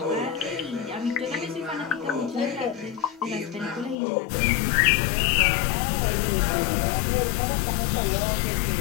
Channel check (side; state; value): right; drops out; at 4.0 s